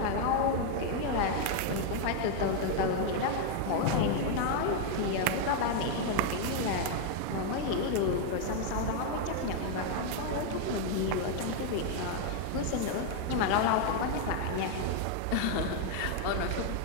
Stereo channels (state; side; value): different; both; correlation 0.00